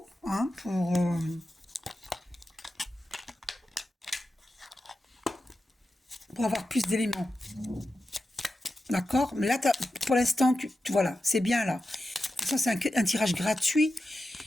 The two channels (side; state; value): both; normal; correlation 0.91